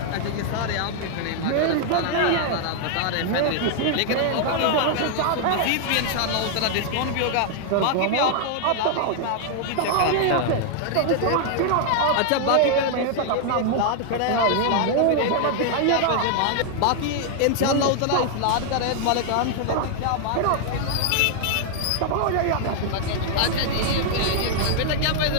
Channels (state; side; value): different; both; correlation 0.00